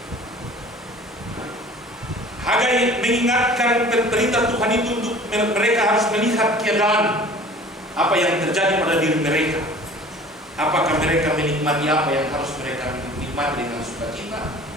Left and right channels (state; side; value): normal; both; correlation 0.46